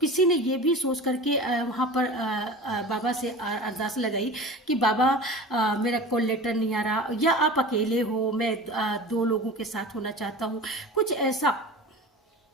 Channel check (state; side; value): normal; both; correlation 0.35